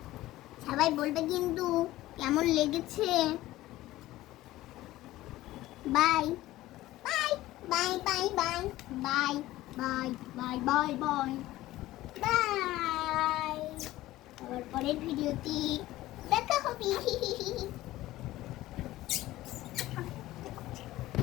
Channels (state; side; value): quieter; right; 16.4 dB